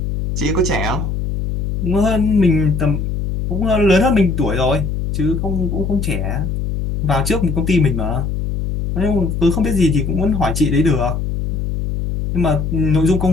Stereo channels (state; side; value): noise; left; hum, 2 dB below the sound